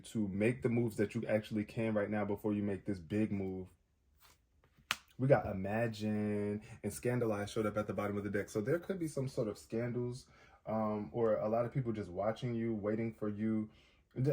make the moves that you actually can right now before you make this big move. We got Imagine and Scandalize showed up at the bottom of the deck. So there could be some sort of scandals, or a lot of people just watching you, waiting for you,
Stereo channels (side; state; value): both; identical; correlation 1.00